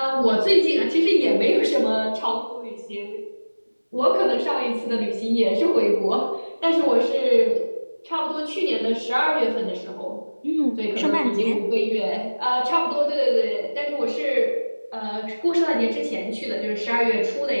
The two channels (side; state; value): both; inverted; correlation -1.00